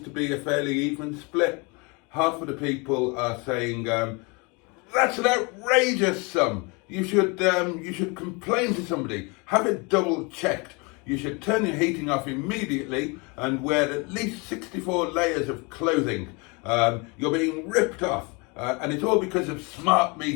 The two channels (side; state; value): right; quieter; 29.7 dB